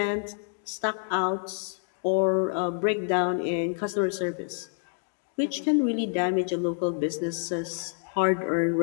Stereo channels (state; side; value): silent; right; 60 dB below the other